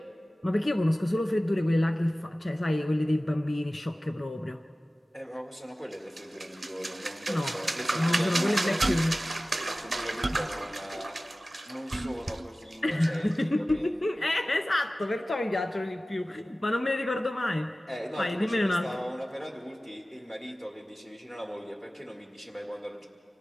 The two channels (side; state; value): both; normal; correlation 0.97